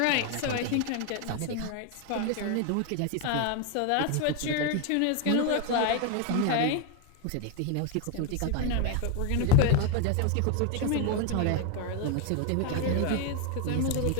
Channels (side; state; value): both; different; correlation 0.01